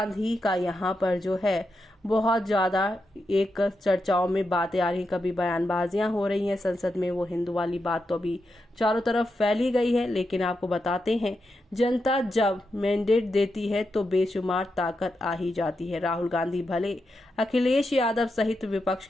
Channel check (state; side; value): normal; both; correlation 0.86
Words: का यहां पर जो है बहुत ज़्यादा एक चर्चाओं में बातें आ रही, कभी बयानबाजियां हो रही हैं संसद में। वो हिंदू वाली बात तो अभी चारों तरफ फैली गई है, लेकिन आपको बताते हैं जनता जब मैंडेट देती है तो बेशुमार ताकत आ ही जाती है। राहुल गांधी भले अखिलेश यादव सहित विपक्ष